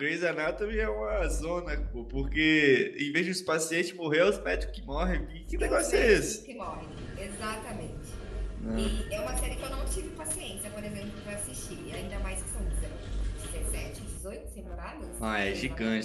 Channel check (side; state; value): both; identical; correlation 1.00